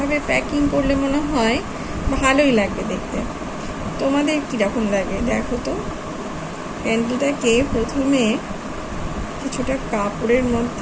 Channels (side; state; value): both; identical; correlation 1.00